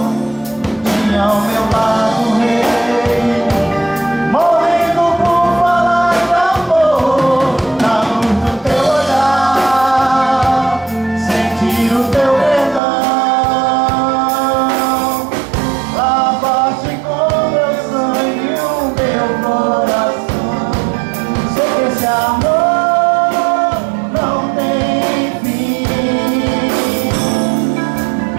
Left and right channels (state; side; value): drops out; left; at 12.8 s